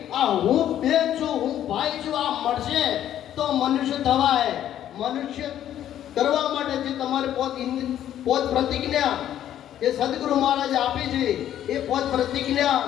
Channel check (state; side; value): quieter; right; 11.2 dB